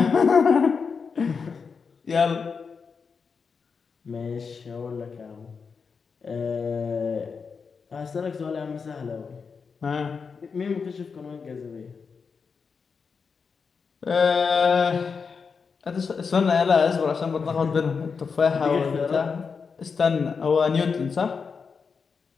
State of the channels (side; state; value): right; quieter; 5.5 dB